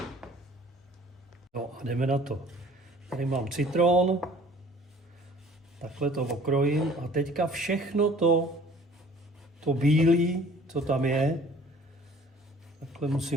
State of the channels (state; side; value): normal; both; correlation 0.52